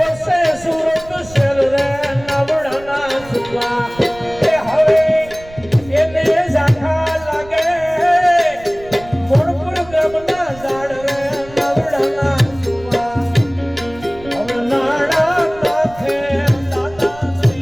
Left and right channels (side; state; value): right; noise; rumble, 20 dB below the sound